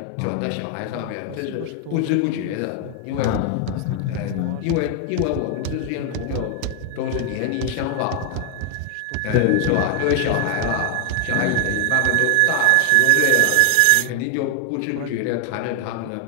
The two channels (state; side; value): different; both; correlation 0.00